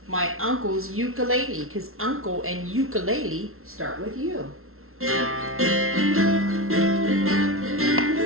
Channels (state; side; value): late; left; 0.62 ms